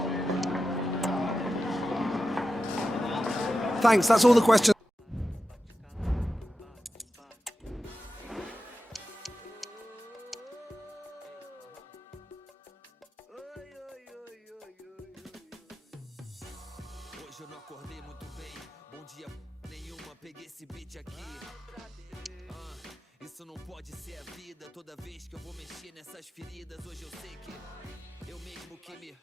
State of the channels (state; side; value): normal; both; correlation 0.92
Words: Thanks, that's all the questions. Hoje eu não acordei muito bem. Bom dia nenhuma, peguei esse beat aqui. Isso não pode ser a vida. Toda vez que eu vou mexer nessas feridas, hoje eu sei que eu mesmo que me...